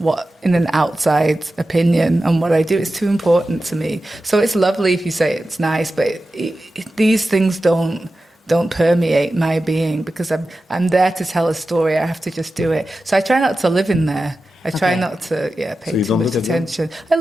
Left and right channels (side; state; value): both; normal; correlation 0.93